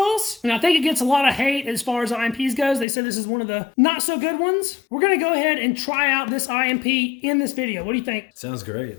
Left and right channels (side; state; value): right; drops out; at 2.9 s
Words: And I think it gets a lot of hate as far as IMPs goes. They said this is one of the not so good ones. We're gonna go ahead and try out this IMP in this video. What do you think? Sounds great.